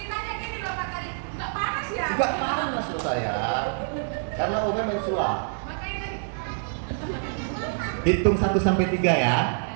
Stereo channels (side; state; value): left; silent; 61 dB below the other